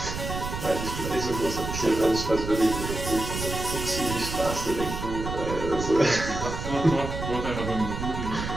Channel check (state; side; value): noise; right; rumble, 6 dB below the sound